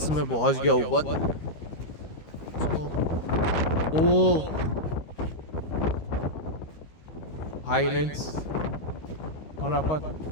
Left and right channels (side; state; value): right; late; 13 ms